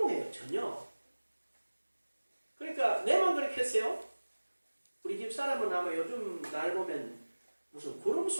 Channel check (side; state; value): both; inverted; correlation -1.00